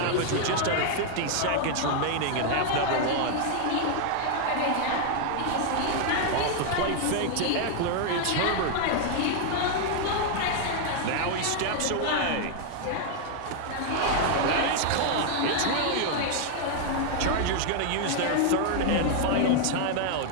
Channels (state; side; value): different; both; correlation 0.00